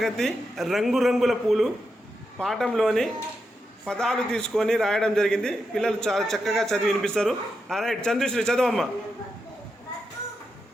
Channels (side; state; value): both; normal; correlation 0.86